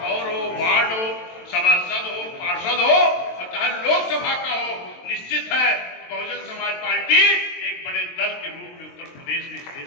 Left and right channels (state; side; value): late; right; 22 ms